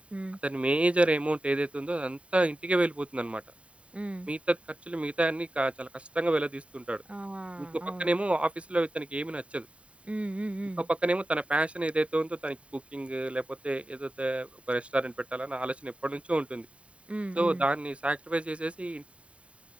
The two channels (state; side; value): late; left; 0.063 ms